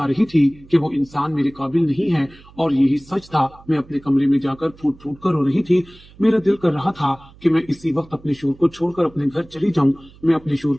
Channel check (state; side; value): noise; right; hum, 24 dB below the sound